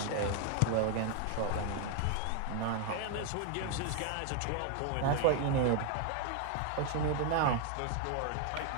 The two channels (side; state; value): both; different; correlation 0.00